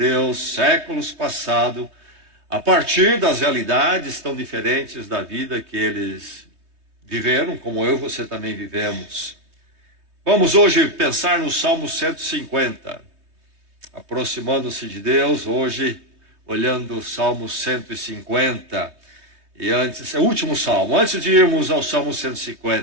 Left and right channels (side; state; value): left; late; 3.2 ms